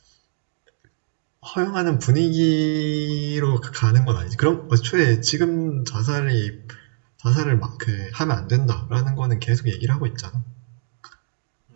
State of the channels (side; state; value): left; silent; digital silence